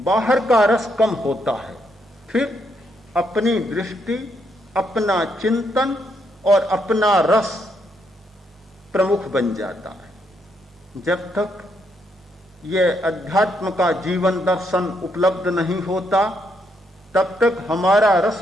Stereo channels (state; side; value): normal; both; correlation 0.76